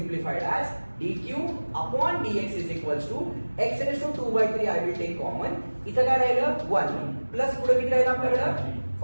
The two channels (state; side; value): inverted; both; correlation -1.00